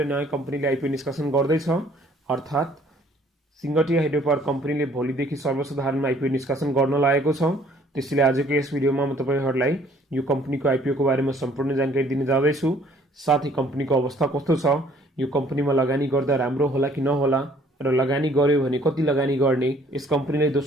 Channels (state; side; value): normal; both; correlation 0.59